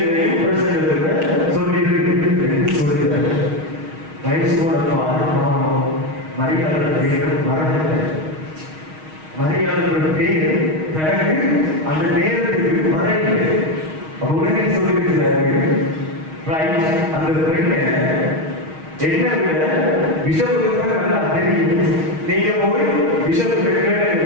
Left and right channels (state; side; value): late; left; 6.4 ms